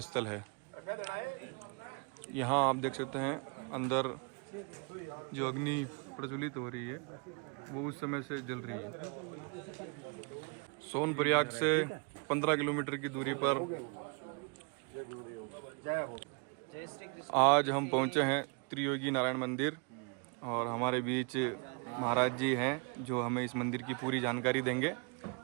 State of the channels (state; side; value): quieter; left; 34.7 dB